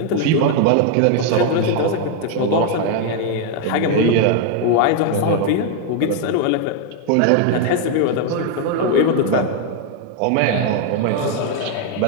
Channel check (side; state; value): both; different; correlation 0.00